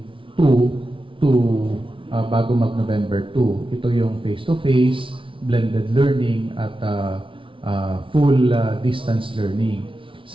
to bago mag-November 2. Ito yung face-to-face, blended learning, at full distance learning.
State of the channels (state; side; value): late; left; 0.25 ms